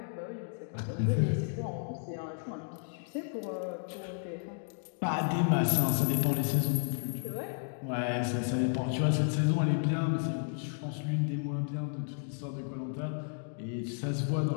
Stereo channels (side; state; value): right; silent; digital silence